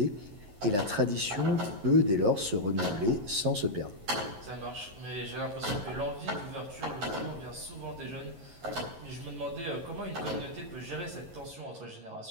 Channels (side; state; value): left; late; 11 ms